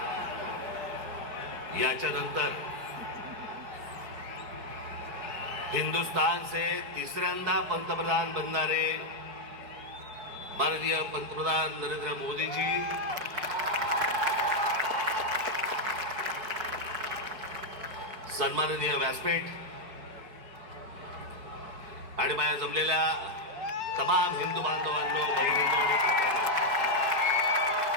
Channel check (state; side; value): late; left; 4.6 ms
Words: याच्यानंतर हिंदुस्तान से तिसऱ्यांदा पंतप्रधान बनणारे माननीय पंतप्रधान नरेंद्र मोदी जी, सन्माननीय व्यासपीठ आणि माझ्या जमलेल्या तमाम हिंदू बांधवांनो, बहिणींनो आणि काकांनो,